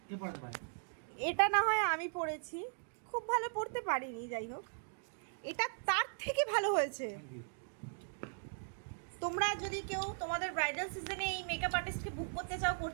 কে পড়াতে পারে? এটা না হয় আমি পড়েছি, খুব ভালো পড়তে পারিনি, যাই হোক এটা তার থেকে ভালো হয়েছে। তোমরা যদি কেউ তোমাদের ব্রাইডাল সিজনে এই মেকআপ আর্টিস্টকে বুক করতে চাও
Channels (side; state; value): left; silent; digital silence